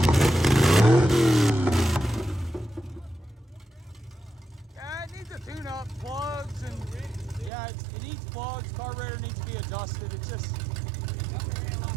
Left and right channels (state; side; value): drops out; left; at 7.5 s